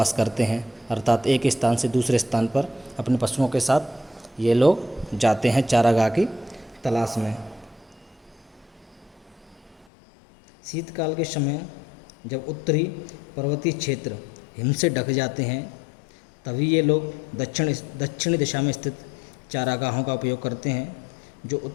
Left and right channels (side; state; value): right; drops out; at 9.9 s